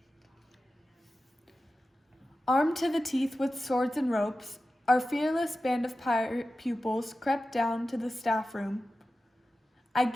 Armed to the teeth with swords and ropes, our fearless band of pirate pupils crept down to the staff room. I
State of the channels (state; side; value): normal; both; correlation 0.94